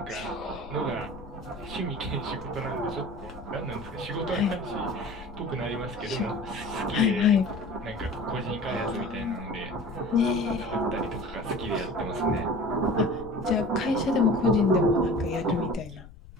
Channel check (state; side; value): noise; left; rumble, 17 dB below the sound